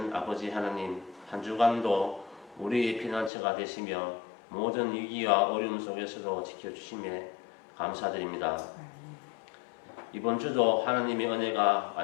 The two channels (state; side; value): drops out; right; at 3.3 s